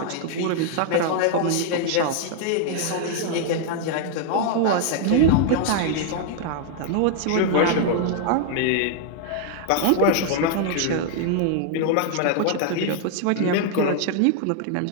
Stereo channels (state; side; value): different; both; correlation 0.00